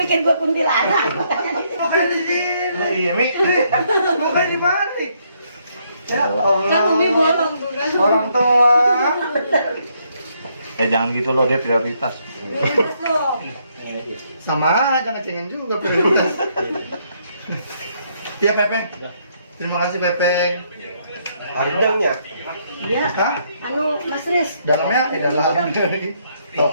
gue kuntilanak? Mukanya di sini. Iya, Mi. Mukanya di balik. Ya Allah. Kan Umi bolong tuh kan. Orang tua. Jangan gitu loh, dia prioritas. Prioritas dong. Sama aja ngecengin juga prioritas. Iya Pepeng. Terima kasih Pepeng. Harganya? Iya. Hah? Anu Mas Riz. Dalamnya dalam dari. Tahu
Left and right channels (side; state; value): both; inverted; correlation -0.72